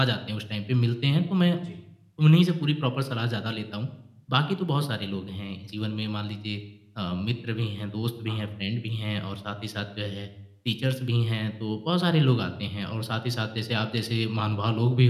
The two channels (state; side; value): identical; both; correlation 1.00